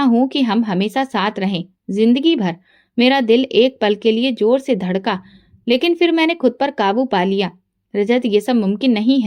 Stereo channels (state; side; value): identical; both; correlation 1.00